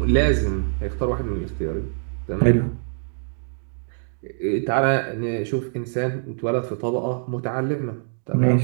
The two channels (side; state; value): left; silent; digital silence